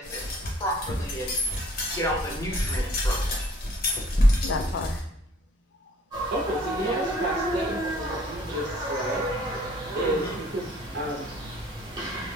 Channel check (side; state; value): both; normal; correlation 0.56